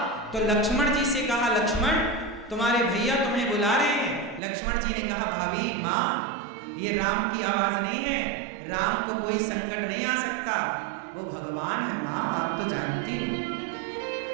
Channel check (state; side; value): drops out; left; at 4.4 s